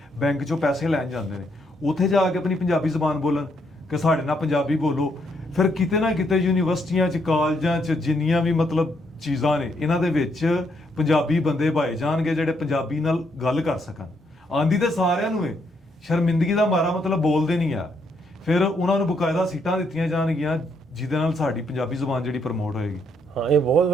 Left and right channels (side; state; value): both; normal; correlation 0.74